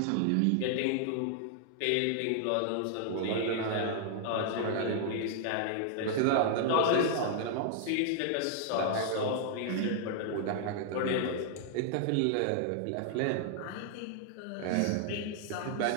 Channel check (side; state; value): both; different; correlation -0.01